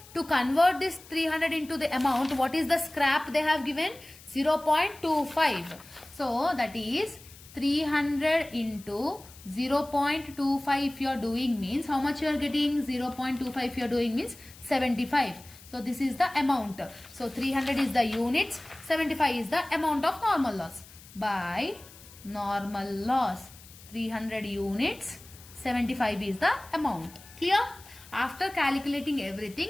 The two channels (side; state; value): left; noise; hiss, 21 dB below the sound